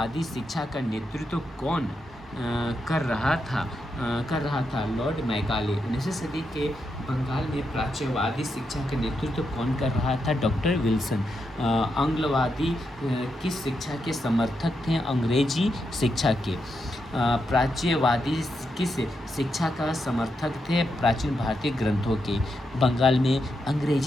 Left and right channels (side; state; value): both; normal; correlation 0.83